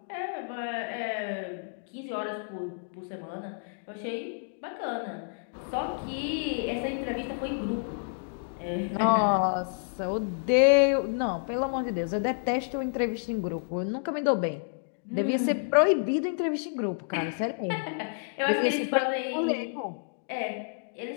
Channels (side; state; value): right; silent; digital silence